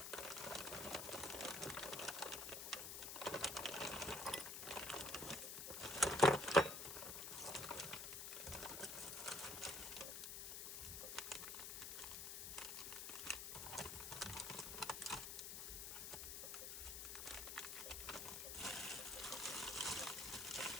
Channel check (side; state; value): left; noise; hiss, 5 dB below the sound